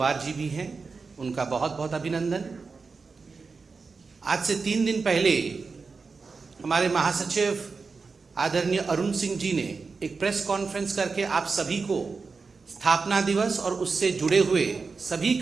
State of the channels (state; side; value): quieter; left; 4.6 dB